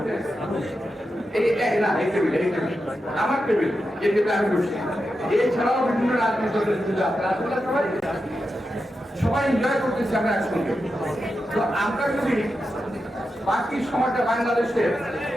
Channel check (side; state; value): both; normal; correlation 0.89